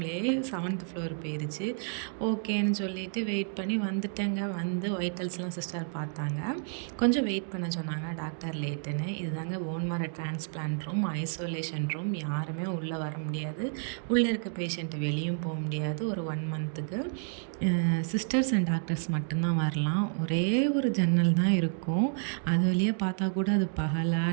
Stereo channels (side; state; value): left; silent; 58 dB below the other